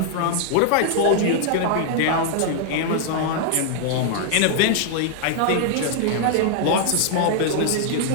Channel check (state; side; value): different; both; correlation -0.01